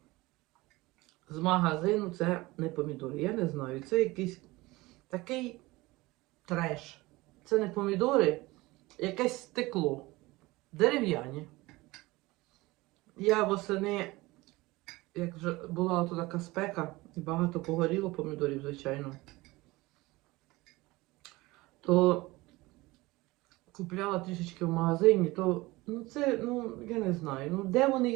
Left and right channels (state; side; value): quieter; left; 20.9 dB